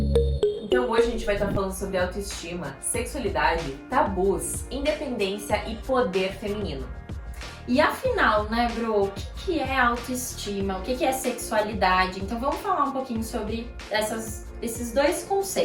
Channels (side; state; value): both; identical; correlation 1.00